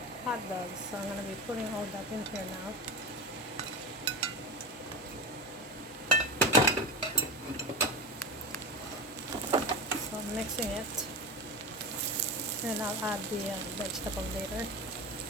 hot dogs. So I'm gonna be putting all that in here now. So I'm mixing it, and I'll add the vegetable later.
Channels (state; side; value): normal; both; correlation 0.23